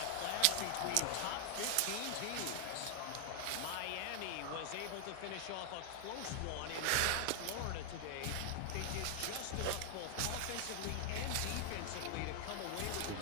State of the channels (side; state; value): both; different; correlation 0.00